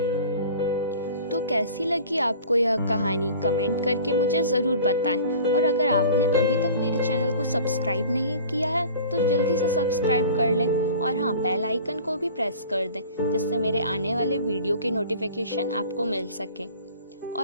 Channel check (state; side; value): inverted; both; correlation -0.43